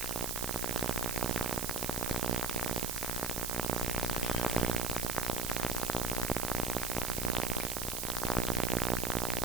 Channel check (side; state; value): right; noise; hiss, 2 dB below the sound